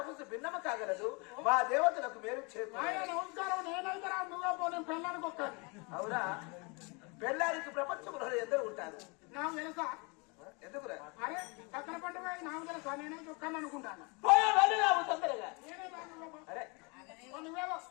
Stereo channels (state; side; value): quieter; right; 30.6 dB